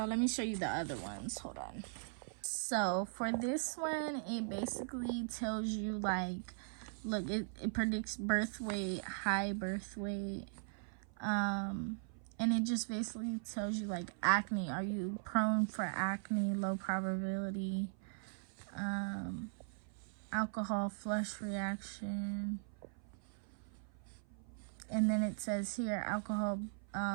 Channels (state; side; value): silent; left; 51 dB below the other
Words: let me show you the other ones. Hold on. So for this one, it basically tells you like, look, it predicts birth weight, high birth weight, and it just basically tells you like acne. Are you prone for acne? Low probability. Alcohol flush reaction. And then it says here, alcohol